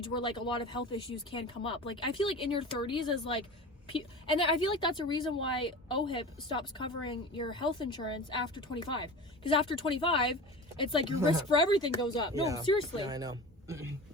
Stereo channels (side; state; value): both; normal; correlation 0.33